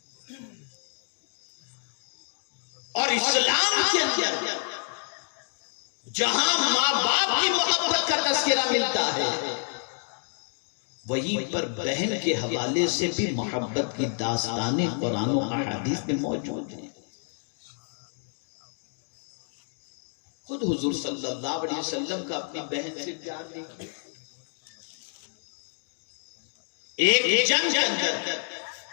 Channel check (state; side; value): silent; right; 59 dB below the other